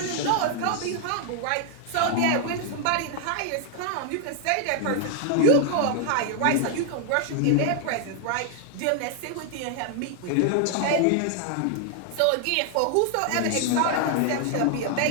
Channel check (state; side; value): different; both; correlation 0.00